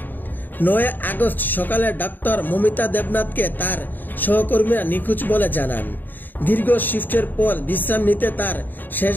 9 আগস্ট সকালে ডাক্তার মমিতা দেবনাথকে তার সহকর্মীরা নিখোঁজ বলে জানান। দীর্ঘ শিফটের পর বিশ্রাম নিতে তার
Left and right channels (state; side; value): late; right; 0.090 ms